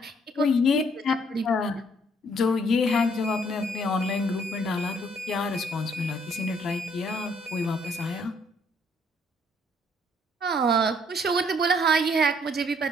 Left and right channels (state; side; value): normal; both; correlation 0.65